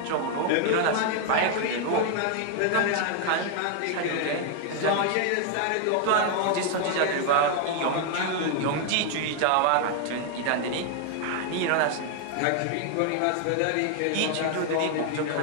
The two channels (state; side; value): different; both; correlation 0.00